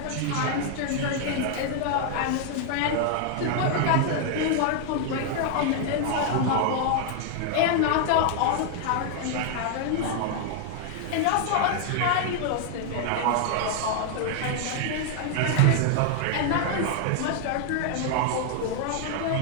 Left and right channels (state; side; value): different; both; correlation 0.00